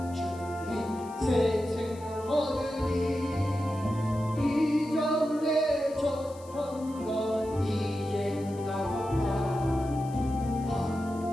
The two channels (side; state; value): left; noise; hiss, 23 dB below the sound